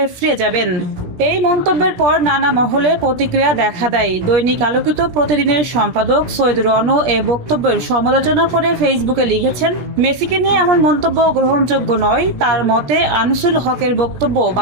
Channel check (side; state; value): left; late; 17 ms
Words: ফিরে যাবেন। এই মন্তব্যের পর নানা মহলে প্রতিক্রিয়া দেখা দেয়। দৈনিক আলোকিত প্রতিদিনের সম্পাদক সৈয়দ রণ এ বক্তব্যের সমালোচনা করে ফেসবুকে লিখেছেন, মেসিকে নিয়ে এমন মন্তব্য গ্রহণযোগ্য নয়। তার মতে আনিসুল হকের বক্তব্য